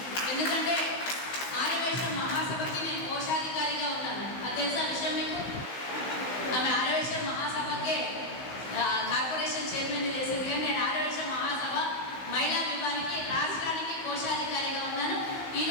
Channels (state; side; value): late; right; 16 ms